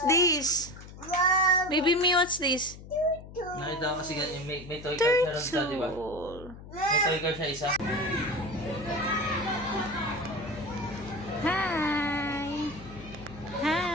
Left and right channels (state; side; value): noise; left; hum, 15 dB below the sound